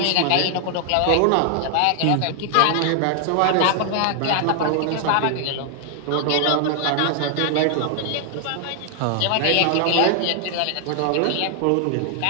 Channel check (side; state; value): both; different; correlation 0.00